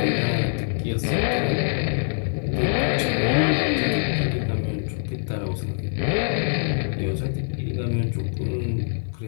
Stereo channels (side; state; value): right; silent; digital silence